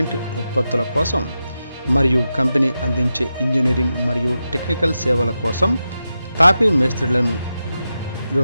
ఉత్పత్తుల కోసం మరియు కంపెనీ అందించే ఇంజనీరింగ్ మరియు టెక్నికల్ సేవల కోసం తాపీ మేస్త్రులను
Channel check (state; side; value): inverted; both; correlation -0.90